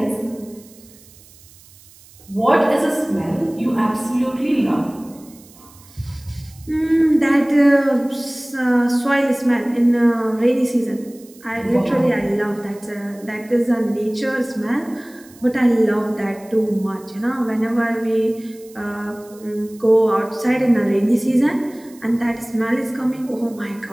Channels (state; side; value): noise; right; hiss, 24 dB below the sound